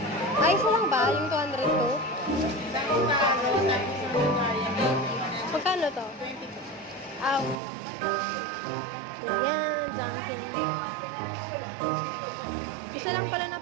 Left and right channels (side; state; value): left; drops out; at 7.6 s